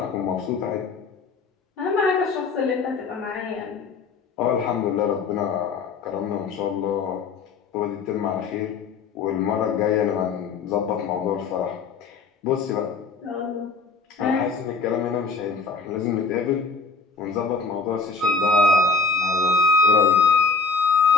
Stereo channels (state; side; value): quieter; right; 4.5 dB